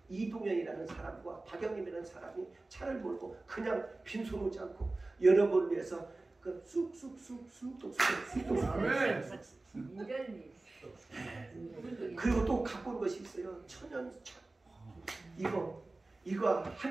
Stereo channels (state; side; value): quieter; left; 3.1 dB